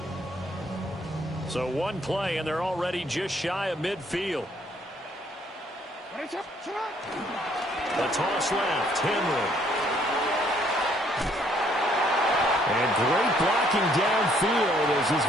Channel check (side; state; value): both; normal; correlation 0.66